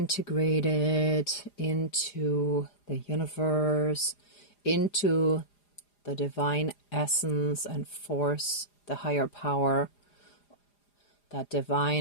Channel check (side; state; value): right; late; 4.9 ms